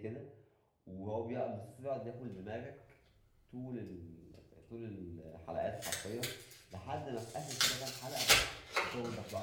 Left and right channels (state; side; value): identical; both; correlation 1.00